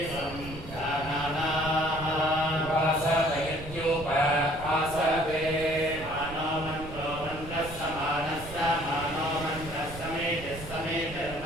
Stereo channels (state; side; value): noise; right; rumble, 13 dB below the sound